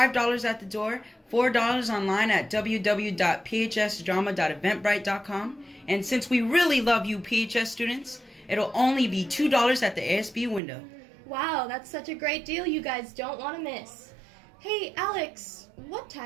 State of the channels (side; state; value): left; drops out; at 10.6 s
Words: at the door, $4 online at www.phsdrama.eventbrite.com. And since we really love you PHS students, it'll only be $2 at the ASB window. Wow, that's such a great deal you guys don't want to miss. Hey, Alex, what